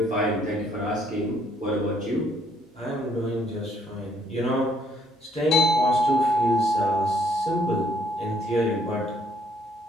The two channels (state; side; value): normal; both; correlation 0.67